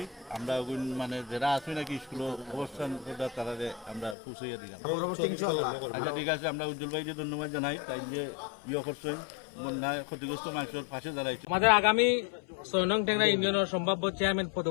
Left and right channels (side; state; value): right; drops out; at 4.2 s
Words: আমরা মানে যারা আছে নাকি স্কুলে অবস্থান করতে তারা আমরা পৌঁছাইয়া দিলাম। আচ্ছা ঠিক আছে, আমরা উজ্জ্বল ভাইকে ধন্যবাদ জানাই তাই যে ইয়ে করছেন বন্যায় ক্ষতিগ্রস্ত মানুষের পাশে দাঁড়াইছে। আমাদের আগামী 6 নং টেংরা ইউনিয়নের সম্ভাব্য চেয়ারম্যান